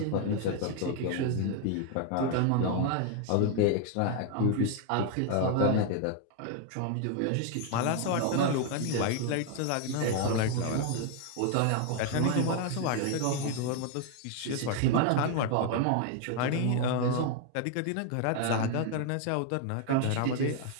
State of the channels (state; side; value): different; both; correlation 0.00